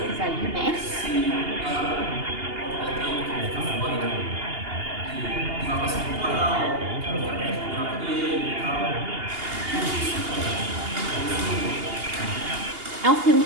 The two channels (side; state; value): left; late; 2.8 ms